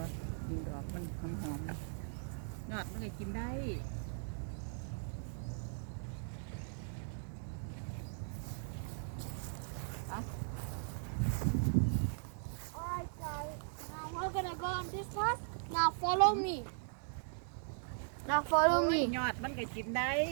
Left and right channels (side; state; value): left; silent; digital silence